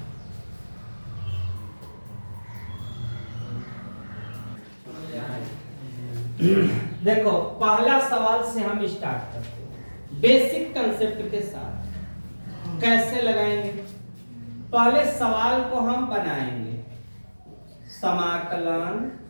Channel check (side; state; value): both; inverted; correlation -1.00